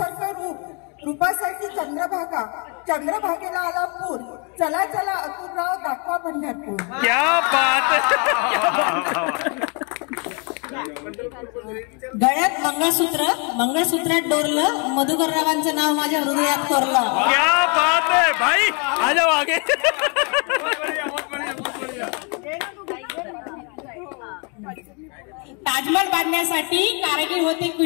रूपासाठी चंद्रभागेला आला पूर. चला अतुलराव दाखवा पंढरपूर. क्या बात. गळ्यात मंगळसूत्रात डोरलं, मधुकररावांचं नाव माझ्या हृदयात कोरलं. क्या बात है भाई, आ जाओ आगे. ताजमहल बांधण्यासाठी कारागीर होते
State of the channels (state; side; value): quieter; right; 34.3 dB